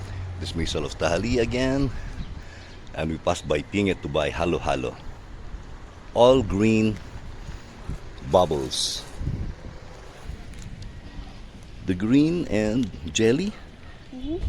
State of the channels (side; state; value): both; identical; correlation 1.00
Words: Dismissal of Tahali again. And we passed by Pinget to buy halo halo. All green bubbles. The green and jelly.